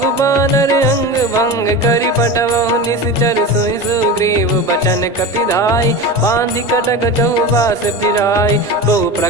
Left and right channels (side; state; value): both; normal; correlation 0.27